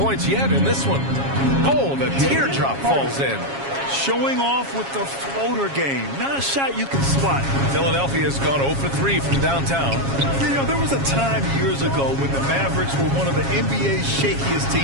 yet in this one. Oh, the teardrop falls in. Showing off with the floater game. Not a shot you can spot. Philadelphia's gone 0 for 3 from downtown. You know, there was a time years ago when the Mavericks were one of the NBA's shakiest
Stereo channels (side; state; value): left; late; 7.3 ms